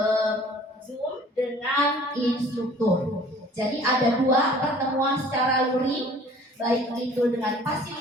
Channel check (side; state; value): both; normal; correlation 0.51